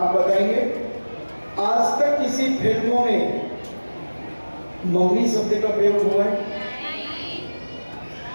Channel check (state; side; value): inverted; both; correlation -1.00